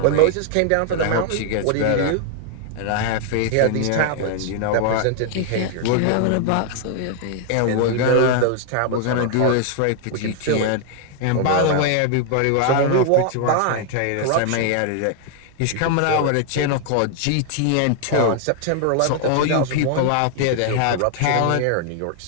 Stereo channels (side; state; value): both; different; correlation 0.00